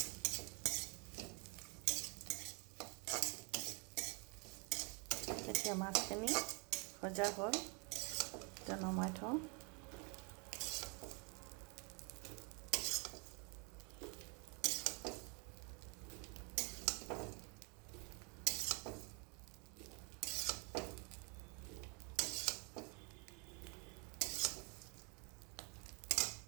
এতিয়া মাছখিনি ভজা হ'ল, এতিয়া নমাই থওঁ।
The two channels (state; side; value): quieter; left; 33.5 dB